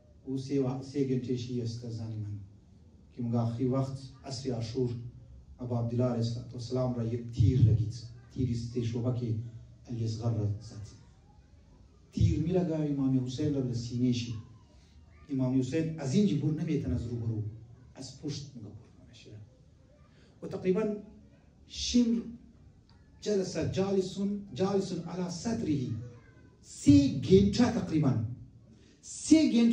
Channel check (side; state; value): both; identical; correlation 1.00